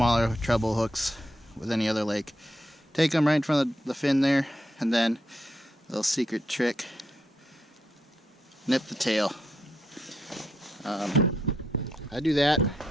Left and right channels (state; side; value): normal; both; correlation 0.81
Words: treble hooks with any other lake. Take them right in front of the fin there, and then a little secret trick, nip the tail. I do that